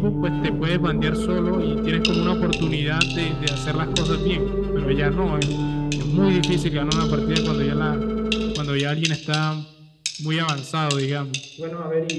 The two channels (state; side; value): identical; both; correlation 1.00